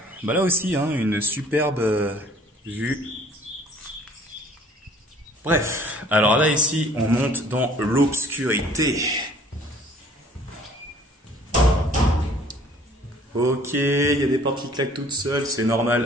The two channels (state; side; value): normal; both; correlation 0.54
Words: là aussi, hein, une superbe vue. Bref, alors là ici, on monte dans l'obscurité. Ok, il y a des portes qui claquent toutes seules, c'est